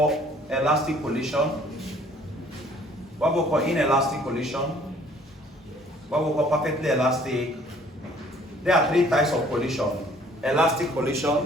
elastic collision. What we call inelastic collision. What we call perfectly elastic. There are three types of collision. Elastic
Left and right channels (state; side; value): normal; both; correlation 0.57